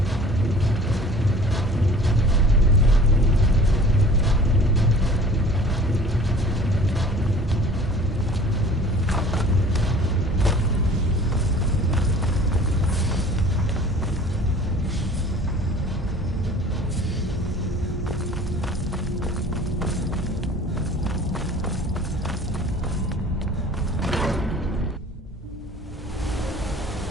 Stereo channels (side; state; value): both; normal; correlation 0.47